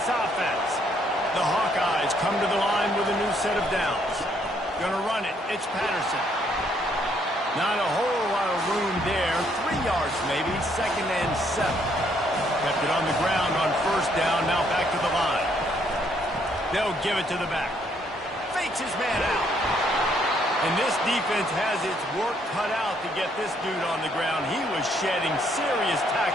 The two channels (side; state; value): both; normal; correlation 0.69